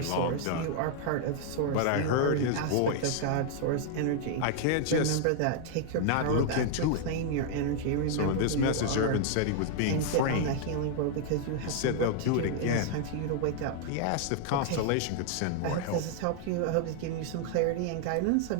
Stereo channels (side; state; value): both; different; correlation 0.00